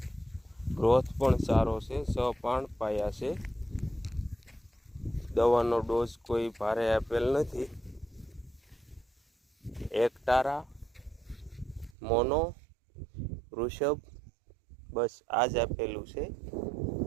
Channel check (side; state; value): left; drops out; at 12.0 s